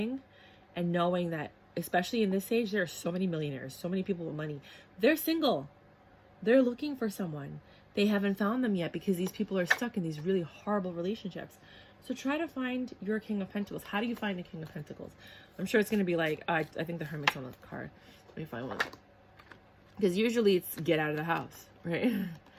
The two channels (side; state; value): both; identical; correlation 1.00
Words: and knowing, that especially in this age, there are so many millionaires, so many people with money. They're single. They're looking for someone. They haven't found them yet because these people are stuck in these really horrible relationships. So try to find your King of Pentacles. How do you find a King of Pentacles? I'm sure it's going to be like, I think the Hermit's on the card. Let me find one. Because usually it's get out of the house, right?